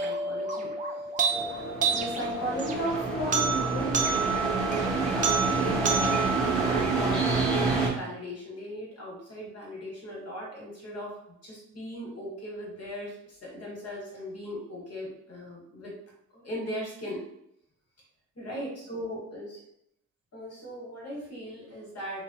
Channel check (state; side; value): quieter; left; 3.2 dB